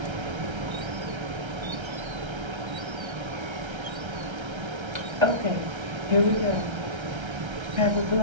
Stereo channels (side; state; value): left; late; 1.3 ms